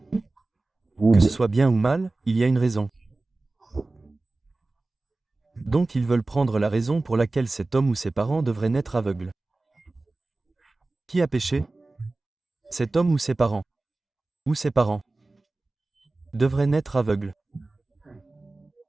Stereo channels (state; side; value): quieter; left; 3.1 dB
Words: Que ce soit bien ou mal, il y a une raison. Donc ils veulent prendre la raison pour laquelle cet homme ou ses parents devraient naître aveugles. Qui a péché? Cet homme ou ses parents? Ou ses parents devraient naître aveugles.